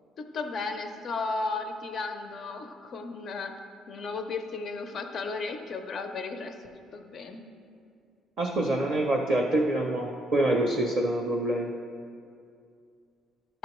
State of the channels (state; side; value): normal; both; correlation 0.71